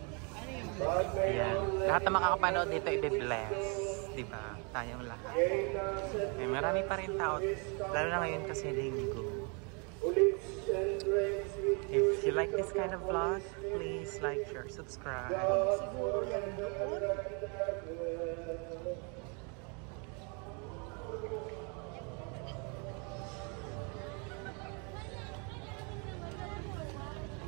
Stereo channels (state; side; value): quieter; left; 34.9 dB